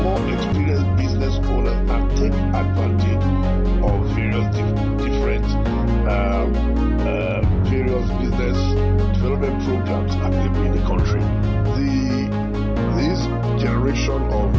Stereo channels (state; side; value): identical; both; correlation 1.00